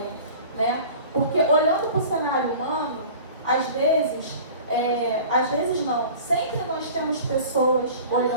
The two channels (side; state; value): both; inverted; correlation -0.41